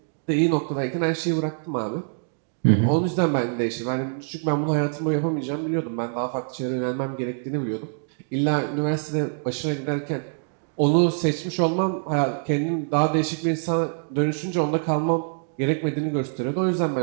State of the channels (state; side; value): silent; left; digital silence